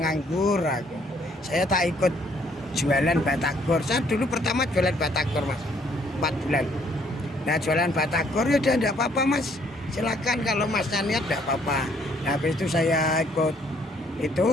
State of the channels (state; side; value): normal; both; correlation 0.65